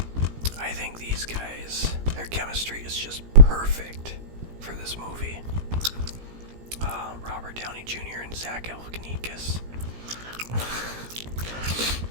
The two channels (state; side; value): late; left; 17 ms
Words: I think these guys, their chemistry is just perfect for this movie. Robert Downey Jr. and Zach Galifianakis.